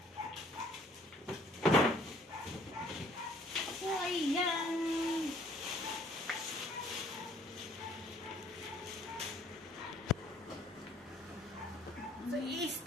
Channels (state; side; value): normal; both; correlation 0.59